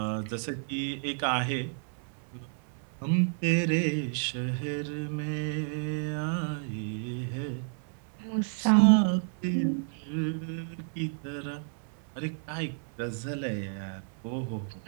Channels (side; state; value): left; silent; 57 dB below the other